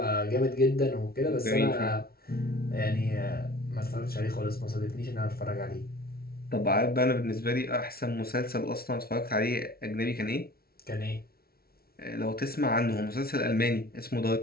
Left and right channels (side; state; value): right; late; 0.44 ms